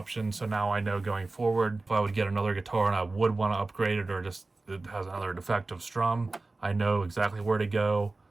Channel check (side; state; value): left; quieter; 3.3 dB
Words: so now I know going forward, if I would get another guitar and I would want to upgrade it, or just it has another defective strum, I know exactly where to go,